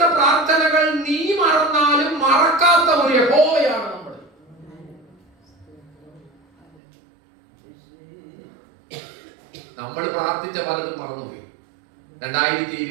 പ്രാർത്ഥനകൾ നീ മറന്നാലും മറക്കാത്ത ഒരു യഹോവയാണ് നമ്മൾ. നമ്മൾ പ്രാർത്ഥിച്ച പലതും മറന്നുപോയി.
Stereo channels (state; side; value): drops out; left; at 6.8 s